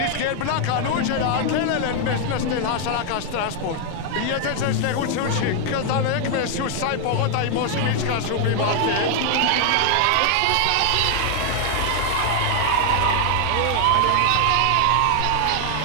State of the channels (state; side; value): different; both; correlation 0.00